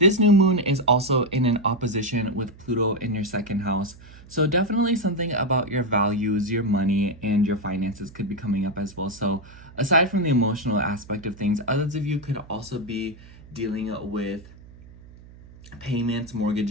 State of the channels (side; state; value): right; noise; hum, 21 dB below the sound